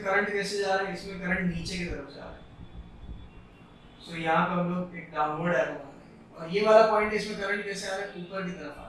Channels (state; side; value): identical; both; correlation 1.00